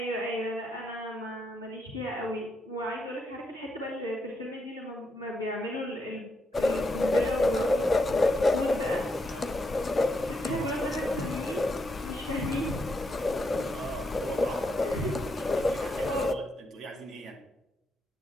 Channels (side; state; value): both; normal; correlation 0.80